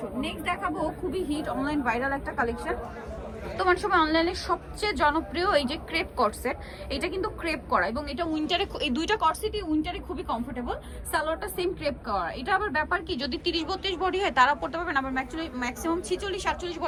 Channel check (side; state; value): both; identical; correlation 1.00